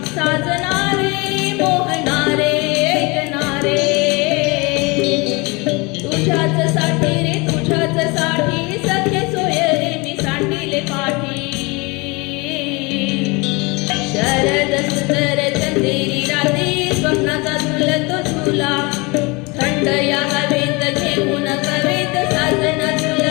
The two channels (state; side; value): quieter; right; 26.7 dB